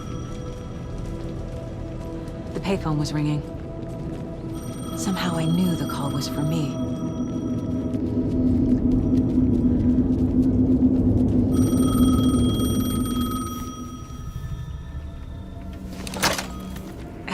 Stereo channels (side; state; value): both; identical; correlation 1.00